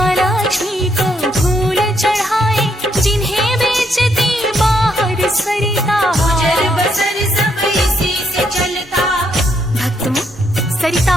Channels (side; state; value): both; normal; correlation 0.75